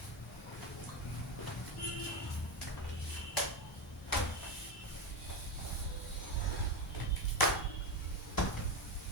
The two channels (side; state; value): both; normal; correlation 0.14